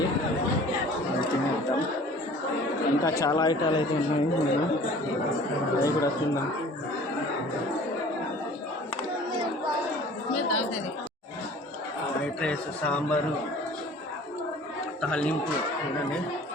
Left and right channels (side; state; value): both; normal; correlation 0.47